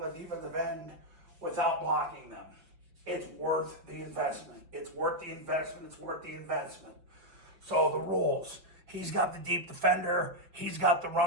and the defensive end without blocking them. It's worth the investment. It's worth the investment. It's worth the investment. So the rules. He's got the deep defender. He's got the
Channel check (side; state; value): left; late; 6.0 ms